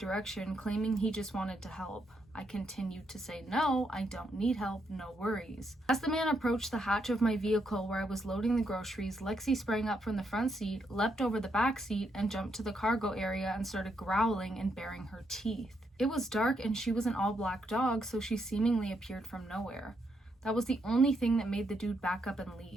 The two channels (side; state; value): both; normal; correlation 0.78